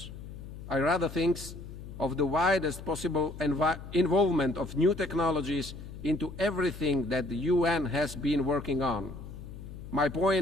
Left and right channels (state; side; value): noise; left; hum, 12 dB below the sound